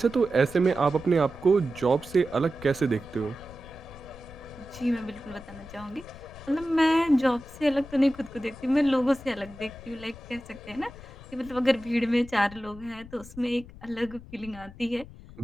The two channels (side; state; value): left; noise; rumble, 17 dB below the sound